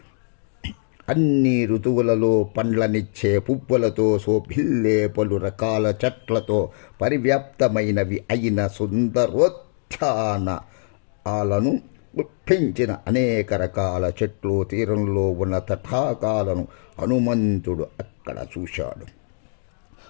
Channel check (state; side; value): silent; right; 64 dB below the other